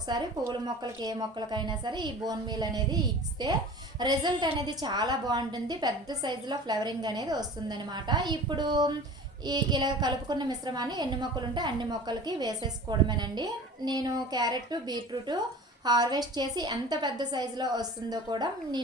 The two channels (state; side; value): normal; both; correlation 0.40